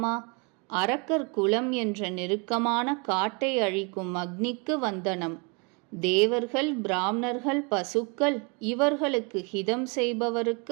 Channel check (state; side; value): quieter; left; 32.5 dB